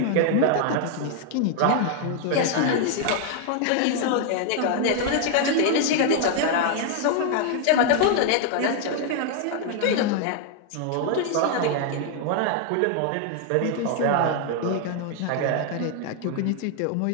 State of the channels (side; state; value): both; different; correlation 0.00